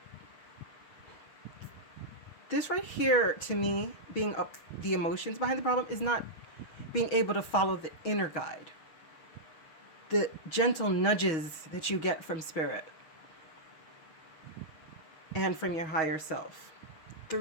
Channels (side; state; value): right; late; 6.3 ms